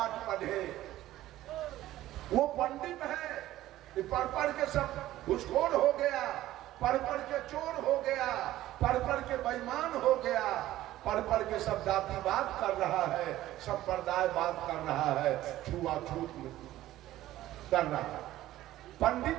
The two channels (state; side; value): quieter; left; 14.8 dB